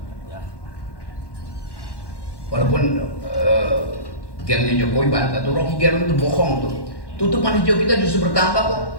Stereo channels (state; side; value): late; right; 1.1 ms